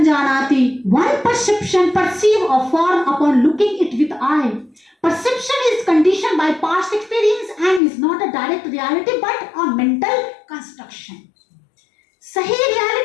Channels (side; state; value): right; drops out; at 7.8 s